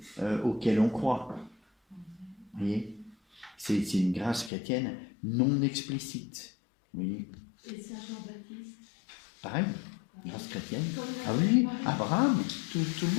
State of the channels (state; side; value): drops out; right; at 4.5 s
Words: auxquelles on croit. Vous voyez, c'est une grâce chrétienne non explicite. Vous voyez. Et Saint Jean-Baptiste? Pareil, grâce chrétienne. Ah oui, Abraham, tout le